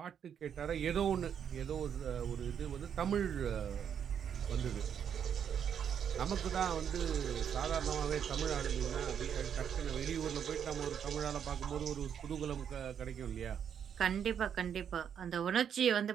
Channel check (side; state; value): left; quieter; 8.3 dB